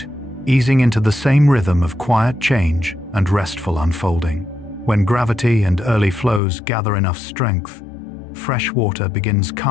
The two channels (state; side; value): drops out; right; at 6.4 s